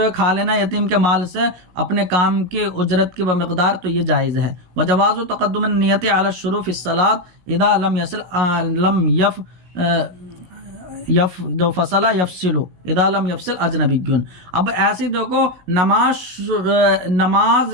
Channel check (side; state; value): left; late; 17 ms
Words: ہے کھا لینا یتیم کے مال سے اپنے کام کی اجرت کی مقدار، تو یہ جائز ہے۔ وجواز تقدم النیت علی الشروع فی الصلاۃ اذا لم یصل فصل یفصل اذا لم یفصل اجنبی۔ اب ایسے دیکھو نماز